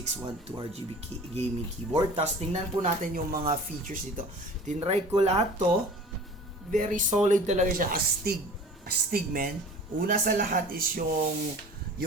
RGB gaming keyboard. Tapos tingnan po natin yung mga features dito. Tinry ko lahat to. Very solid talaga siya. Astig man. Una sa lahat is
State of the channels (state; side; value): normal; both; correlation 0.43